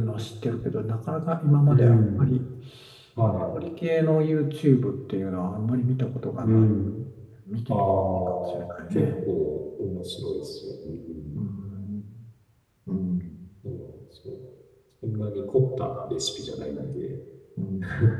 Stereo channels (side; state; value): both; identical; correlation 1.00